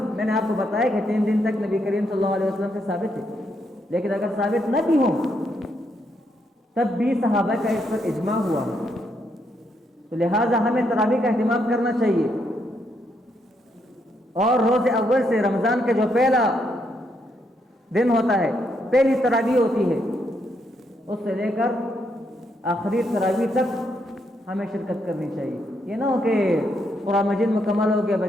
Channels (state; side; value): normal; both; correlation 0.77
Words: میں نے آپ کو بتایا کہ 3 دن تک نبی کریم صلی اللہ علیہ وسلم سے ثابت ہے، لیکن اگر ثابت نہ بھی ہوں تب بھی صحابہ کا اس پر اجماع ہوا، تو لہٰذا ہمیں تراویح کا اہتمام کرنا چاہیے. اور روز اول سے رمضان کا جو پہلا دن ہوتا ہے، پہلی تراویح ہوتی ہے، اس سے لے کر آخری تراویح تک ہمیں شرکت کرنی چاہیے. یہ نہ ہو کہ قرآن مجید مکمل ہو گیا